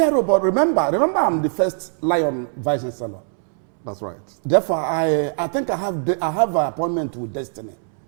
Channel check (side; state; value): left; silent; 65 dB below the other